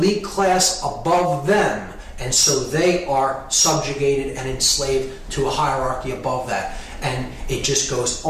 class above them, and so they are subjugated and enslaved to a hierarchy above that. And it just goes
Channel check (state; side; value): identical; both; correlation 1.00